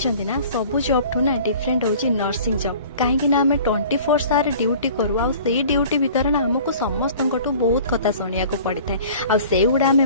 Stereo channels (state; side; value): inverted; both; correlation -0.46